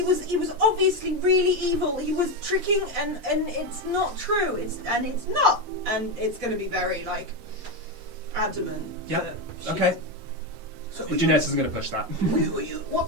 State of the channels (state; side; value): late; left; 6.7 ms